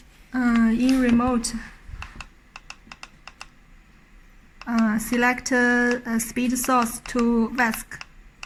In remote, select speed source to VESC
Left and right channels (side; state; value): both; identical; correlation 1.00